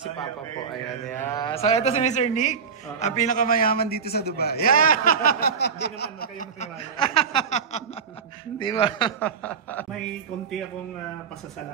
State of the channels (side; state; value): left; quieter; 6.3 dB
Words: Papa po. Ayan, yeah. So, ito si Mr. Nick, ang pinakamayaman dito sa Dubai. Yeah! Hindi naman, kayo matiwala. Di ba? May konti akong